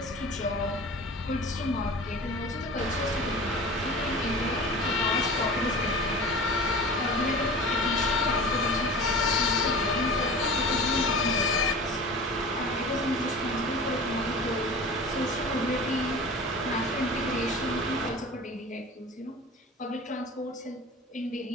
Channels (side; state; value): both; normal; correlation 0.37